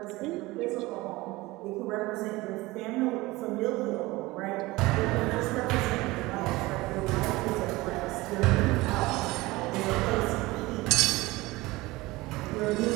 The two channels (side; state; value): left; quieter; 20.5 dB